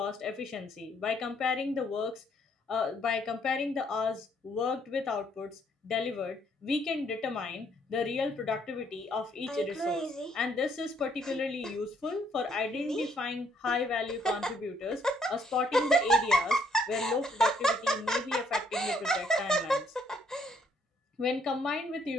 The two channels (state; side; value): normal; both; correlation 0.68